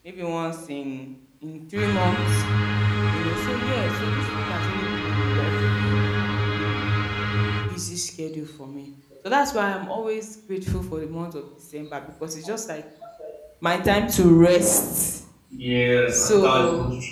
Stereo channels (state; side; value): identical; both; correlation 1.00